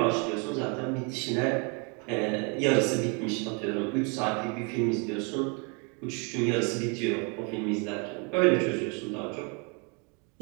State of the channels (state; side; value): quieter; left; 34.3 dB